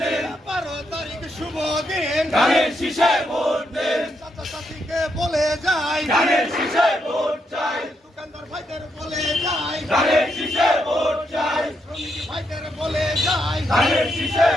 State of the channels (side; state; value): both; normal; correlation 0.79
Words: 12 তারিখ শুভ দিন, ধানের শীষে ভোট দিন, চাচা চাচিকে বলে যাই, ধানের শীষে ভোট চাই, দোকানদার ভাইদের বলে যাই, ধানের শীষে ভোট চাই, শ্রমিক ভাইদের বলে যাই, ধানের শীষে